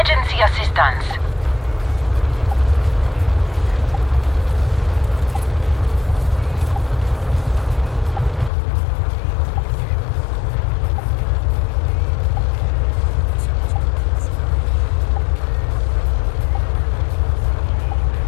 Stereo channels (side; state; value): right; drops out; at 8.5 s